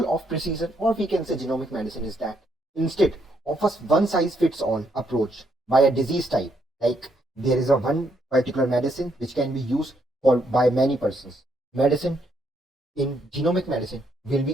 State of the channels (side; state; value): both; normal; correlation 0.74